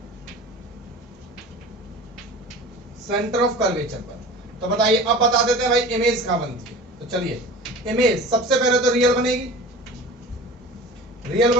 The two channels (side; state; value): both; normal; correlation 0.37